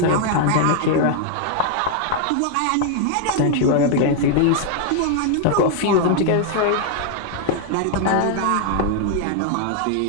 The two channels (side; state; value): both; different; correlation 0.00